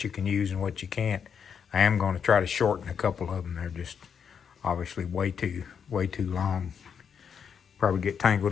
you can use and what you can't. I am going to try to shorten a couple of them. They're just obviously way too long. Probably get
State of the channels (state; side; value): quieter; right; 7.2 dB